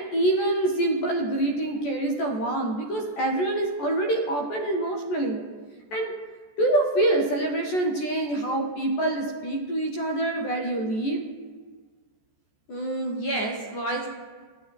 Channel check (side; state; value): right; late; 14 ms